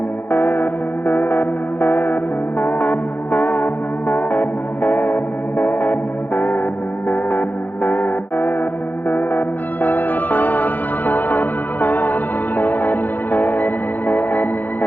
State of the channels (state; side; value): late; right; 0.085 ms